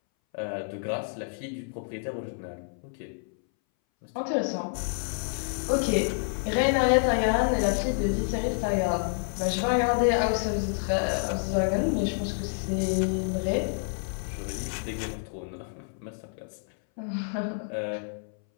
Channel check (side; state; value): right; silent; 59 dB below the other